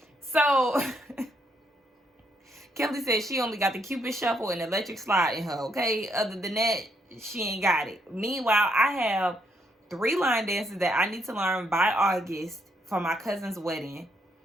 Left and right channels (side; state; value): both; normal; correlation 0.74